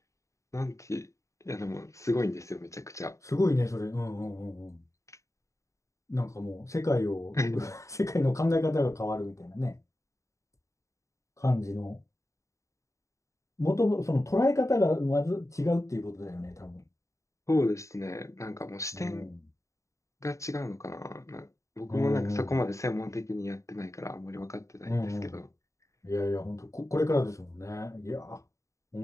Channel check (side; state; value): right; late; 0.15 ms